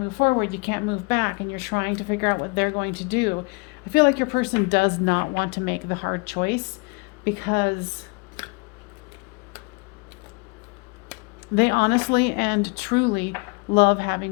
forward, you can't move back, and you're trying to figure out what they're going to do. I feel like your person does not want to make the hard choice, because they honestly and truly love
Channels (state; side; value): quieter; right; 30.3 dB